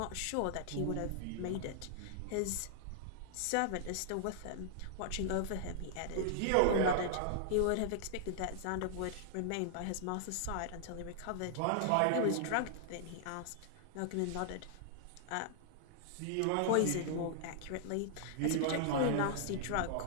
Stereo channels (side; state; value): both; different; correlation -0.01